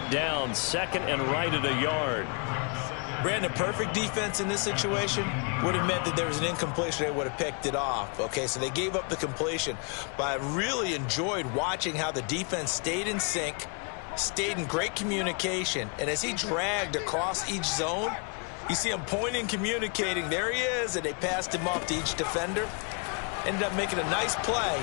down. 2nd and right at a yard. Brandon, perfect defense in this situation would have meant that there was an incompletion. They would have picked it off. Okay, so they gave up the completion. But I really enjoyed watching how the defense stayed in sync, stayed in great communication. And as he dragged across each zone, you see him pointing, communicating. There he is, and they passed him off to each defender. Ended up making a nice play,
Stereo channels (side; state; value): right; quieter; 37.2 dB